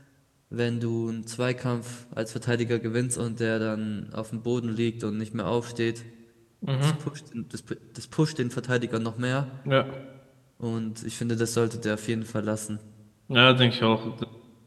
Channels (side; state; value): both; identical; correlation 1.00